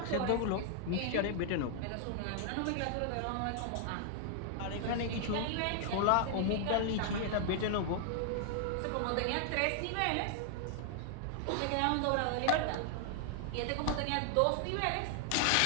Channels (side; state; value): both; different; correlation 0.00